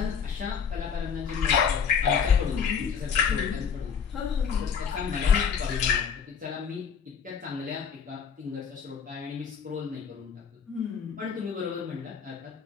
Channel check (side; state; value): right; quieter; 6.7 dB